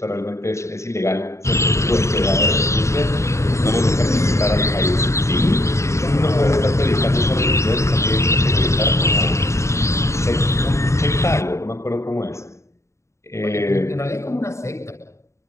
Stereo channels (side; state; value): right; late; 0.14 ms